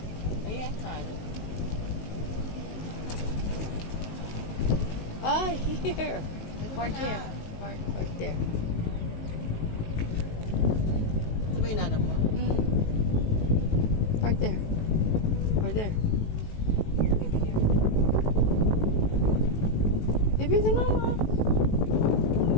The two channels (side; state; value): right; late; 19 ms